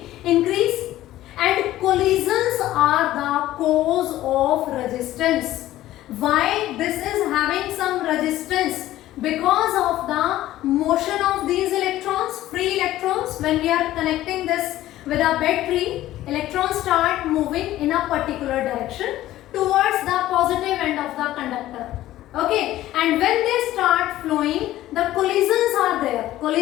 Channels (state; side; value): quieter; right; 14.6 dB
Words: increased. And collisions are the cause of resistance. Why this is having some resistance? Because of the motion of these electrons, free electrons. When we are connecting this with a battery, electrons start moving in a particular direction towards the positive end of the conductor. Okay, and when they start flowing, the collisions are there.